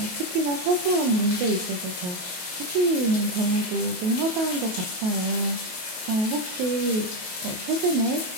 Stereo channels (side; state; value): left; late; 28 ms